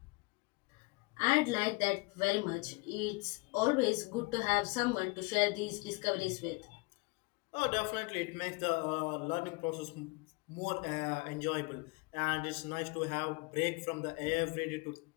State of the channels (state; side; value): quieter; right; 27.2 dB